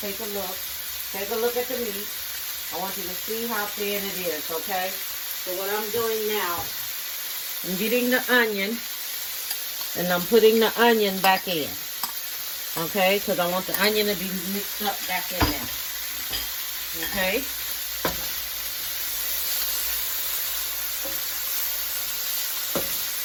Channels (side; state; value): both; identical; correlation 1.00